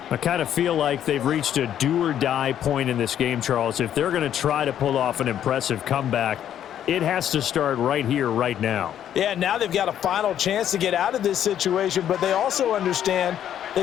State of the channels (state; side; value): quieter; right; 10.3 dB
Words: I kind of feel like they've reached a do-or-die point in this game, Charles. If they're going to try to pull off an impressive comeback, it has to start right here, right now. Yeah, now they've got a final chance to get out of this situation, but they also understand